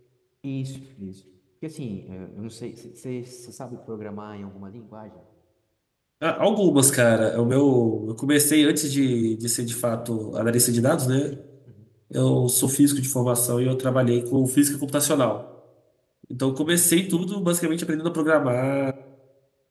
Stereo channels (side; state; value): both; identical; correlation 1.00